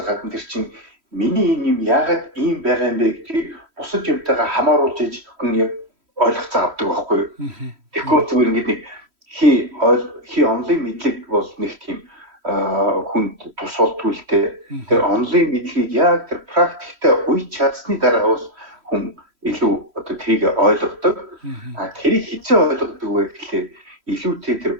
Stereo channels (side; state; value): left; late; 3.1 ms